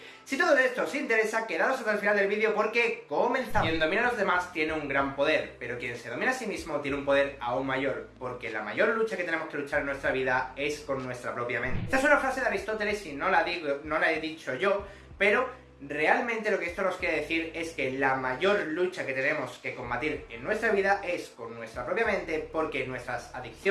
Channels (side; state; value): both; identical; correlation 1.00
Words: Si todo esto os interesa, quedaros hasta el final del vídeo porque comenzamos. Quien domina a los demás tiene un gran poder, pero quien se domina a sí mismo tiene un poder aún mayor, porque la mayor lucha que tenemos que luchar en nuestra vida es con nuestra propia mente. Esta es una frase de Aristóteles y no la he dicho yo, pero realmente lo que esto nos quiere decir es que la mayor lucha que tenemos que combatir en nuestra vida es con nuestra propia mente, porque nuestras